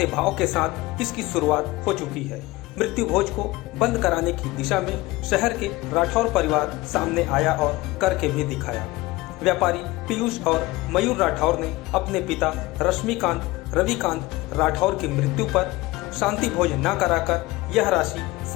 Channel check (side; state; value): right; quieter; 20.1 dB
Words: भाव के साथ इसकी शुरुआत हो चुकी है। मृत्यु भोज को बंद कराने की दिशा में शहर के राठौर परिवार सामने आया और करके भी दिखाया। व्यापारी पीयूष और मयूर राठौर ने अपने पिता रविकांत राठौर की मृत्यु पर शांति भोज न कराकर यह राशि